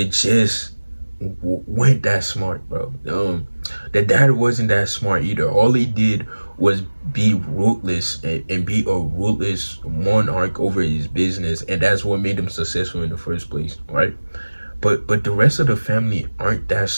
weren't that smart, bro. The dad wasn't that smart either. All he did was be ruthless and be a ruthless monarch over his business, and that's what made him successful in the first place, right? But the rest of the family aren't that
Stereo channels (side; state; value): both; inverted; correlation -1.00